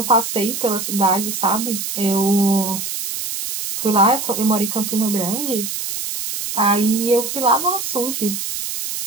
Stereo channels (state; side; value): noise; right; hiss, 5 dB below the sound